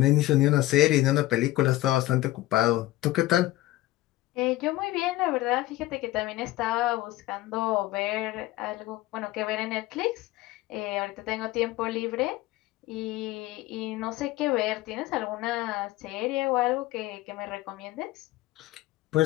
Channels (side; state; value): right; quieter; 17.0 dB